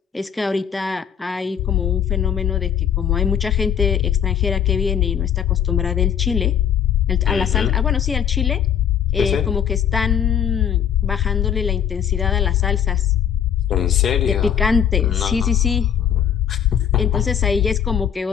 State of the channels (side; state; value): right; quieter; 8.7 dB